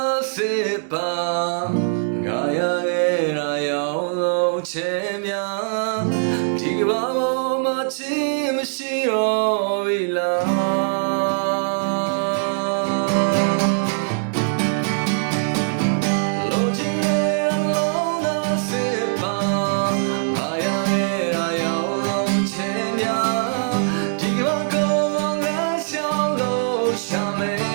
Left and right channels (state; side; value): silent; left; digital silence